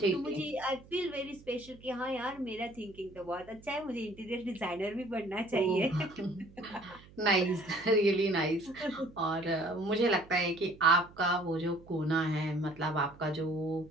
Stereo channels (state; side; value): noise; right; hum, 22 dB below the sound